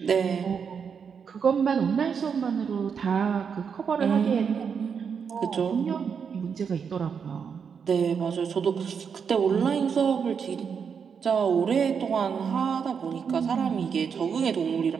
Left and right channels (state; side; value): quieter; left; 6.6 dB